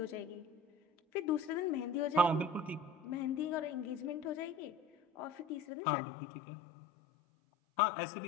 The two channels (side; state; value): right; drops out; at 5.7 s